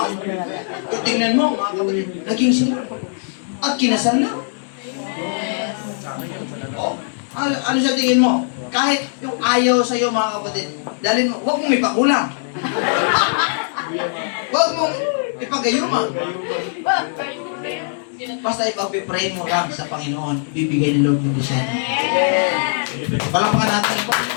Tingnan mo, mga kapatid. Naging sila. At kinasal na. Oh, ano siya tingin mo? Kahit yung ayaw sa'yo, mga kapatid, dahil huwag mong ipakulang. Huwag mong ipagayuma. Basta ipag-pray mo lang sa Panginoon, ibibigay ni Lord yung desire. Palakpakan natin ang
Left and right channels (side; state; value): right; silent; digital silence